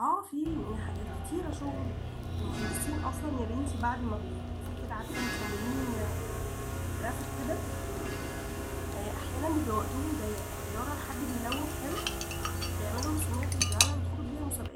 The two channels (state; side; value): identical; both; correlation 1.00